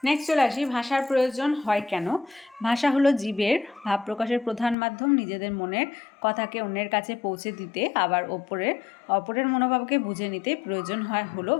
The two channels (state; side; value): drops out; right; at 4.8 s